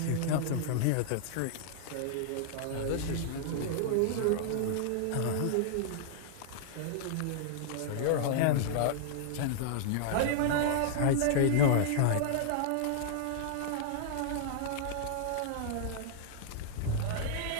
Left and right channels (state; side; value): different; both; correlation -0.01